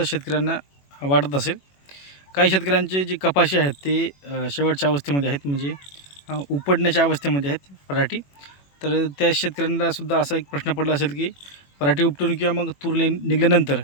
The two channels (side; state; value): right; late; 21 ms